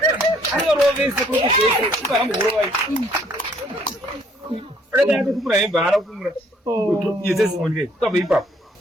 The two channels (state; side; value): normal; both; correlation 0.63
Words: anorovese kwekuzese ipahamborovai akati atokumura hembe haana kumura yezesimonikai ukabva ipapo